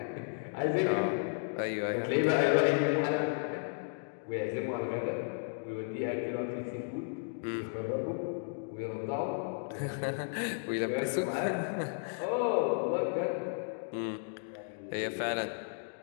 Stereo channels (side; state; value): right; silent; digital silence